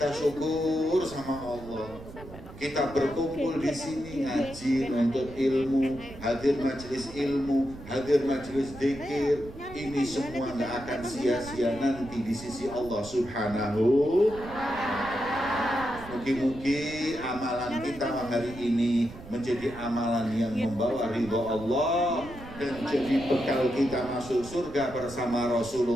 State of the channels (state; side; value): noise; right; rumble, 15 dB below the sound